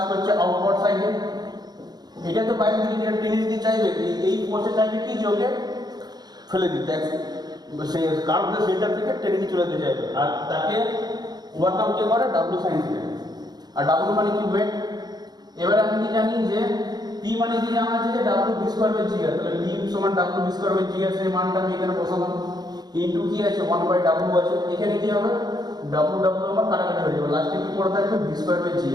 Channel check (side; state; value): left; late; 0.20 ms